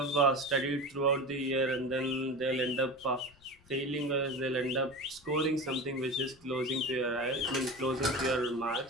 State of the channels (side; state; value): left; noise; rumble, 28 dB below the sound